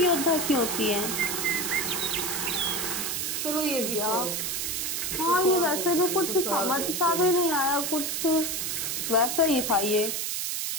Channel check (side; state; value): right; noise; hiss, 1 dB below the sound